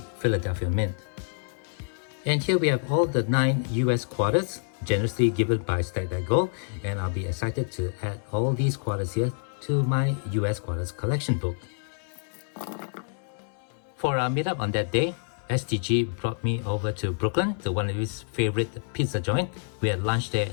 Philadelphia Mint. And here we have all the 9 US quarters generously given by Stack That Gold. And I'll be excited to add all these quarters here to my US quarters collection book. For our meetup on that day, STG brought me over to Brooklyn to one of his favorite pizza joint. We had lunch there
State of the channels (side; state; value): right; silent; digital silence